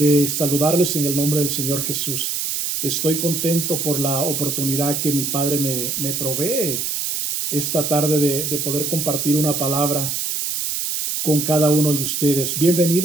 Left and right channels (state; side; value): noise; right; hiss, 1 dB below the sound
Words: saludarles en el nombre del Señor Jesús. Estoy contento por la oportunidad que mi Padre me provee esta tarde de poder compartir una palabra con cada uno de ustedes.